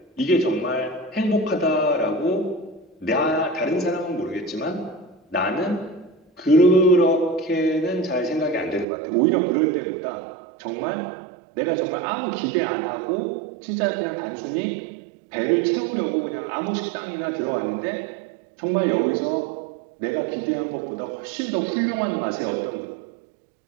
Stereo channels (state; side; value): drops out; left; at 8.8 s